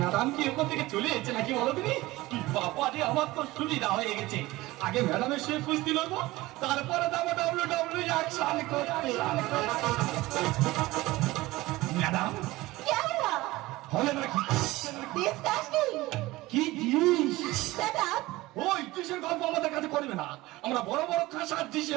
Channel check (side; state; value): left; quieter; 19.2 dB